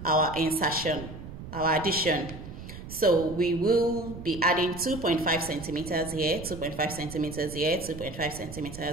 our insertion, our addition. So we will be adding 2.5 centimeters here, 2.5 centimeters here, 2.5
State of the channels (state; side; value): noise; right; rumble, 12 dB below the sound